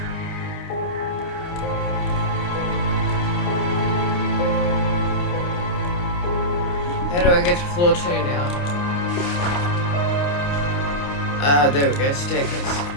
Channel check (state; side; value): late; right; 29 ms